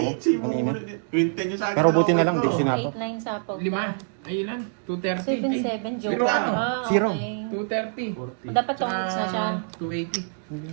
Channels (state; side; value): silent; left; digital silence